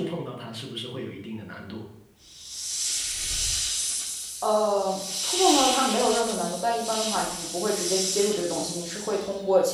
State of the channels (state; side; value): identical; both; correlation 1.00